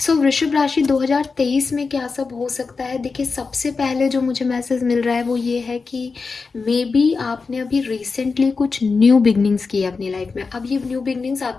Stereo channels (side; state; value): right; quieter; 4.5 dB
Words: सो वृषभ राशि 2023 में क्या सब हो सकता है। देखिए, सबसे पहले जो मुझे मैसेज मिल रहा है वो ये है कि मे बी आपने अभी रिसेंटली कुछ न्यू बिगनिंग्स की है अपनी लाइफ में। अब ये न्यू बिगनिंग्स